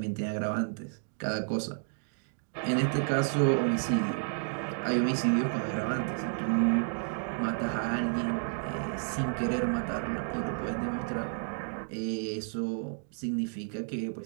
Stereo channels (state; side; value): silent; left; 57 dB below the other